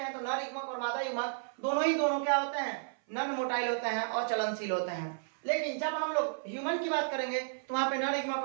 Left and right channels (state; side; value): silent; left; 56 dB below the other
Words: हैं तो नर युग्मक और मादा युग्मक दोनों क्या होते हैं, नॉन मोटाइल होते हैं और चलनशील होते हैं। लेकिन जब हम लोग ह्यूमन की बात करेंगे तो वहां पे नर युग्मक